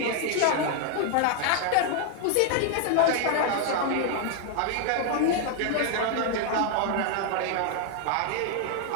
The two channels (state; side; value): different; both; correlation 0.00